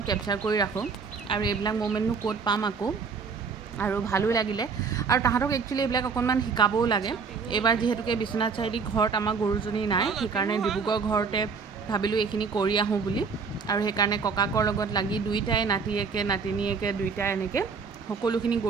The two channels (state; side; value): quieter; left; 5.3 dB